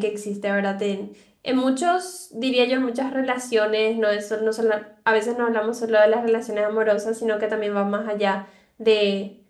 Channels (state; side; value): identical; both; correlation 1.00